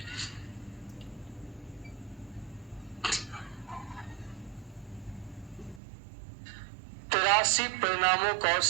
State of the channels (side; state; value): left; drops out; at 5.8 s